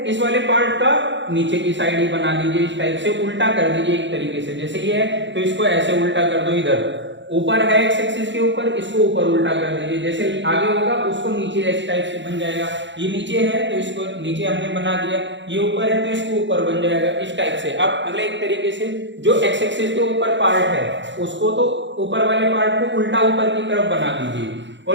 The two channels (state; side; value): late; left; 0.53 ms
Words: इस वाले पार्ट का नीचे की साइड ही बना दीजिए इस टाइप से, उल्टा कर दीजिए एक तरीके से, जैसे ये है तो इसको ऐसे उल्टा कर दो, इधर ऊपर है एक्स एक्सिस के ऊपर, इसको ऊपर उल्टा कर दीजिए, जैसे आगे होगा उसको नीचे इस टाइप से बन जाएगा, ये नीचे है तो इसको नीचे हमने बना दिया, ये ऊपर है तो इसको ऊपर बन जाएगा इस टाइप से। अब मतलब एक तरीके से जो एक्स एक्सिस के ऊपर पार्ट है उसको तो ऊपर वाले पार्ट को उल्टा ऊपर की तरफ बना दीजिए